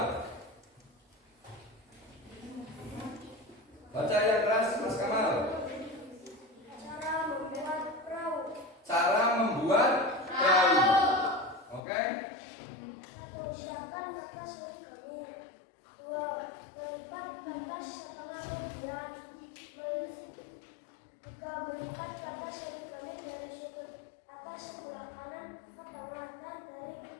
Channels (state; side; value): drops out; right; at 11.8 s